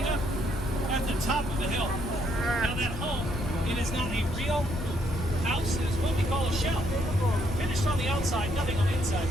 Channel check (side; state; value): left; noise; rumble, 6 dB below the sound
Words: up at the top of the hill. Now that home, it is not a real house, it is what we call a shell. Finished on the outside, nothing on the inside.